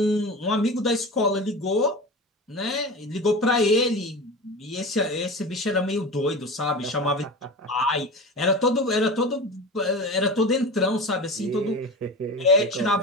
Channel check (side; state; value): both; normal; correlation 0.30